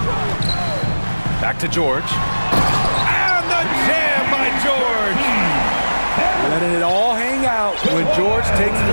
Back to George. And the jam by George. Letting it all hang out. When George takes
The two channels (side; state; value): both; inverted; correlation -1.00